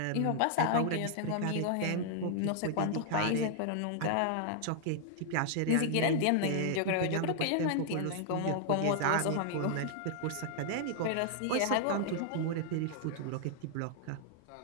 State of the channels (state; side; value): different; both; correlation -0.01